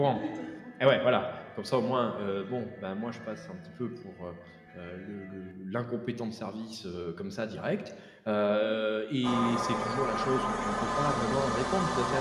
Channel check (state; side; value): identical; both; correlation 1.00